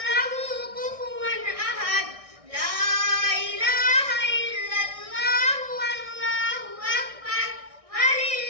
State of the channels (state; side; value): late; left; 1.6 ms